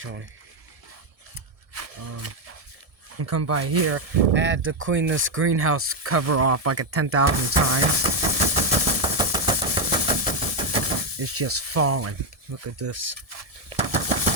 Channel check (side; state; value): left; late; 1.7 ms